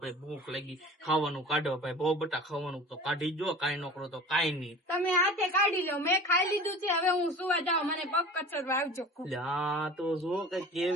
ભાઈ ભૂખ લાગી, ખાવાનું કાઢો ભાઈ. બહુ બટા ખાવાનું તો કાઢી જો, કાઈ નોકરો તો કાઈ નહીં. તમે હાથે કાઢી લો, મેં ખાઈ લીધું છે. હવે હું સુવા જાઉં, મને પગ કચરવા આવજો. લ્યા તો જો કે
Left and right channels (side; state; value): both; normal; correlation 0.40